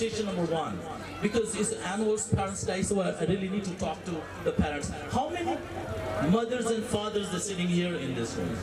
number 1, because it's annual Parents' Day, so I really need to talk to the parents. How many mothers and fathers are sitting here in this room?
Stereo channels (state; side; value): identical; both; correlation 1.00